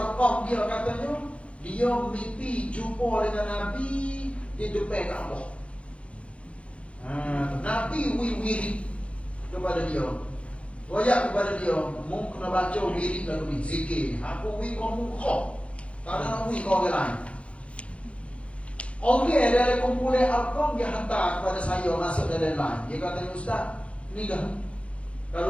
dia katanya dia mimpi jumpa dengan Nabi di depan Kaabah. Nabi wirid kepada dia. Wayak kepada dia, mu kena baca wirid lalu ni, zikir. Aku kamu kau. Tak ada nak kau orang lain. Orang dari kumpulan Arqam dia hantar kepada saya masuk dalam line. Dia kata, Ustaz, ni dah.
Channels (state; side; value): late; right; 0.061 ms